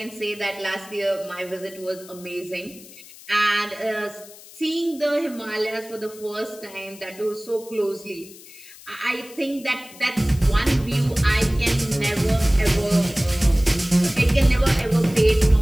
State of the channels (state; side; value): noise; left; hiss, 19 dB below the sound